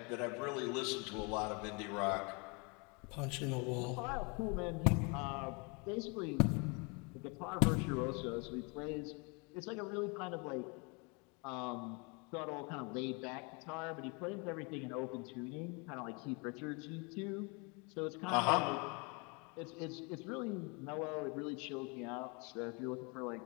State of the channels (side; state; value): right; quieter; 31.4 dB